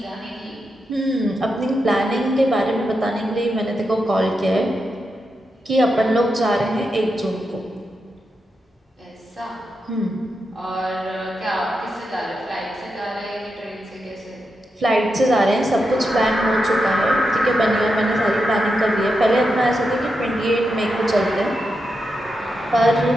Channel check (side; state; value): both; normal; correlation 0.86